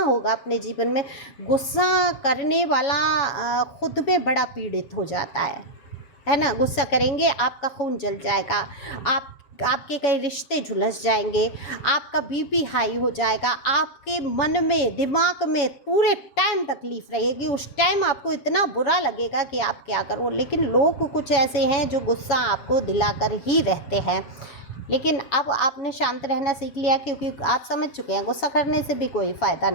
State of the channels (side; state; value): right; late; 7.3 ms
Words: अपने जीवन में, गुस्सा करने वाला खुद में बड़ा पीड़ित हो जाता है ना। गुस्सा करेंगे, आपका खून जल जाएगा, आपके कई रिश्ते झुलस जाएंगे, आपका बीपी हाई हो जाएगा, आपके मन में, दिमाग में पूरे टाइम तकलीफ़ रहेगी। उस टाइम आपको इतना बुरा लगेगा कि आप क्या करो। लेकिन लोग कुछ ऐसे हैं जो गुस्सा आपको दिलाकर ही रहते हैं। लेकिन अब आपने शांत रहना सीख लिया, क्योंकि आप समझ चुके हैं गुस्सा करने से भी कोई फ़ायदा